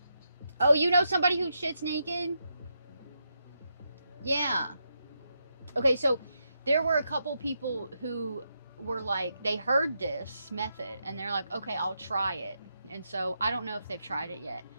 Oh, you know somebody who shits naked? Yeah. Okay, so there were a couple people who were like, they heard this method and they're like, okay, I'll try it. And so I don't know if they've tried it yet.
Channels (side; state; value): both; inverted; correlation -0.83